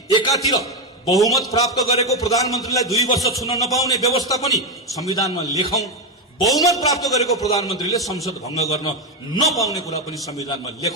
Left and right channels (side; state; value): both; normal; correlation 0.10